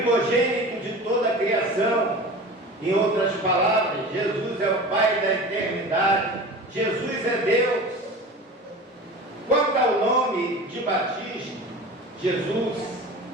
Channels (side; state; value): both; normal; correlation 0.35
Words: de toda a criação. Em outras palavras, Jesus é o Pai da eternidade, Jesus é Deus. Quanto ao nome de batismo, Jesus,